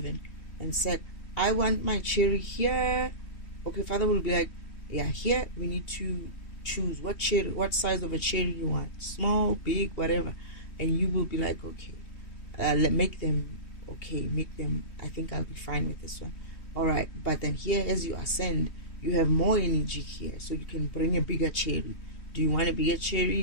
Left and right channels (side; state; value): right; late; 2.8 ms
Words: and said, I want my cherry here. Okay, Father will be like, yeah, here we need to choose what size of a cherry you want. Small, big, whatever. And you will be like, okay, make them, I think I'll be fine with this one. All right, but then here, as you ascend, you have more energy here, so you can bring a bigger cherry. Do you want a bigger